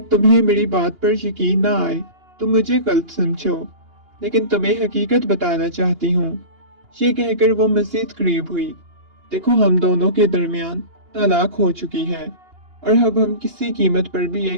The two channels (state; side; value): late; left; 2.8 ms